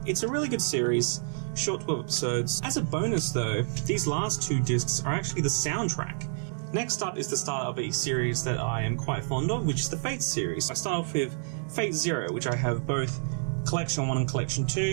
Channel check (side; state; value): left; silent; digital silence